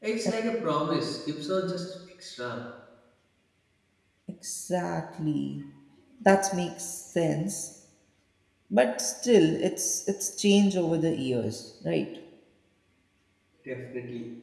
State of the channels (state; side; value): identical; both; correlation 1.00